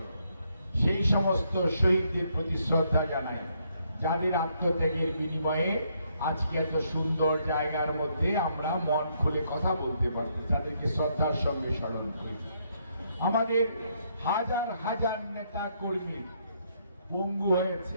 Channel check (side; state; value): both; inverted; correlation -0.73